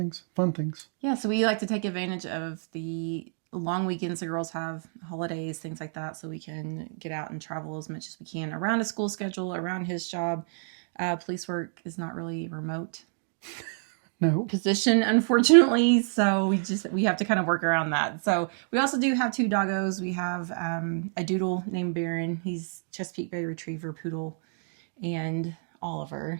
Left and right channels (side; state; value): left; silent; digital silence